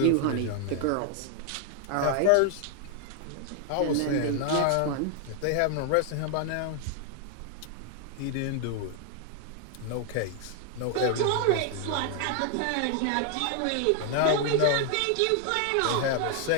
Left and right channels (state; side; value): different; both; correlation 0.00